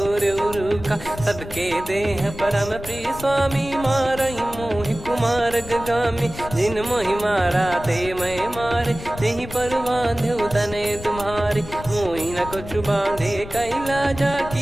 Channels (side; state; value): left; noise; rumble, 12 dB below the sound